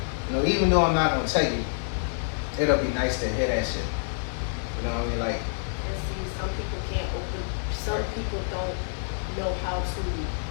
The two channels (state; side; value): silent; right; 60 dB below the other